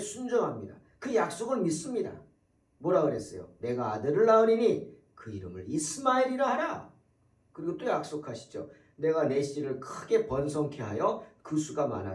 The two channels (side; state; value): both; identical; correlation 1.00